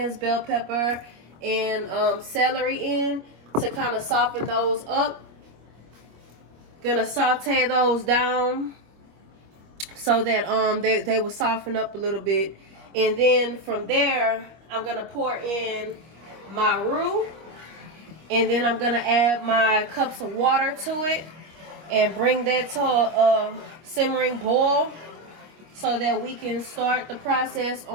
bell pepper, and celery in to kind of soften those up. Gonna saute those down so that they will soften up a little bit, and then from there I'm gonna pour in my roux, and then I'm gonna add my cups of water to it and bring that to a simmering boil so that we can start the process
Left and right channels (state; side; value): late; left; 25 ms